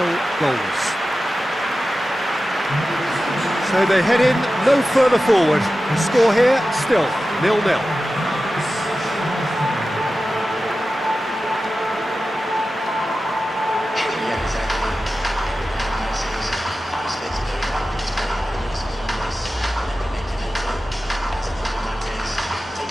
goalless. So they head in no further forward. The score here, still 0-0.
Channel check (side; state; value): both; normal; correlation 0.94